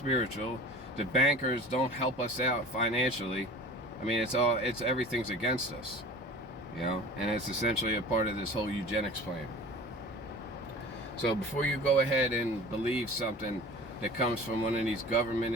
The bankers don't help us out financially. I mean, everything's against us. You know, and it's essentially a part of this whole eugenics plan. So before you go ahead and believe something that comes from one of these government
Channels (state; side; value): normal; both; correlation 0.40